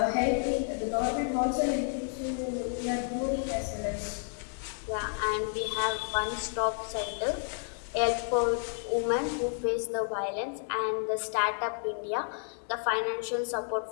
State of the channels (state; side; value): silent; right; 57 dB below the other